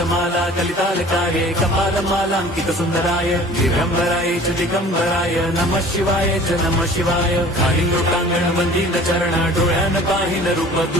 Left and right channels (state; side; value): normal; both; correlation 0.47